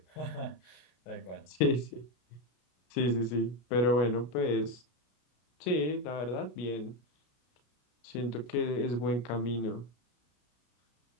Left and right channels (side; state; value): right; late; 33 ms